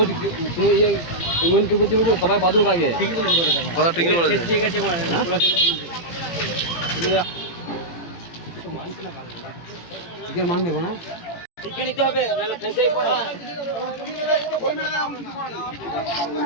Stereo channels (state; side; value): late; right; 18 ms